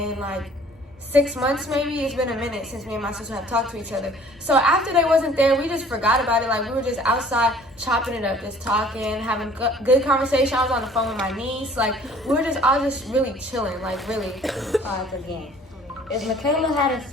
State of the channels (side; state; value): both; normal; correlation 0.53